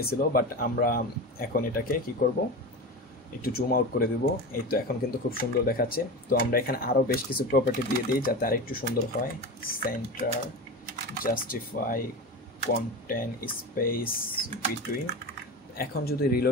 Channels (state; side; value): normal; both; correlation 0.26